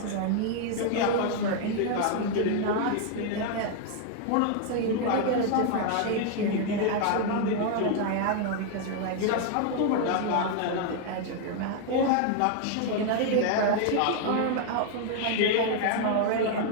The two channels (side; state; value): both; different; correlation 0.00